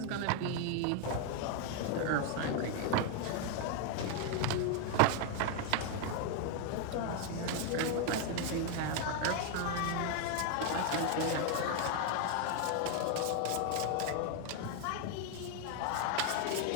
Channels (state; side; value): different; both; correlation 0.00